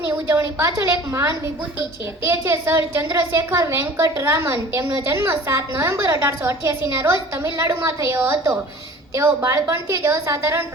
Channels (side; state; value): both; normal; correlation 0.44